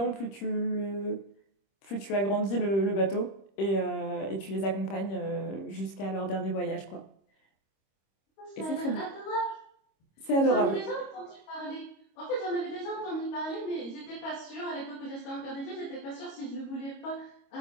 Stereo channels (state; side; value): late; right; 25 ms